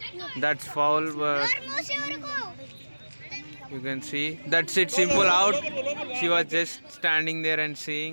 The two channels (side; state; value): both; inverted; correlation -1.00